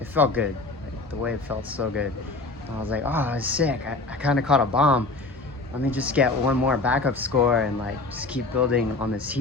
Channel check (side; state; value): right; quieter; 3.3 dB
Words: felt good. Like, the wave felt so good. And I was like, oh, that was sick. I kind of caught a bomb. Let me just get one more backup score and like just keep building on this